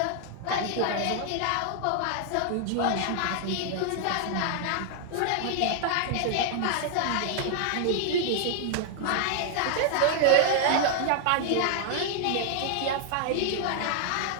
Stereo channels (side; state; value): both; different; correlation 0.00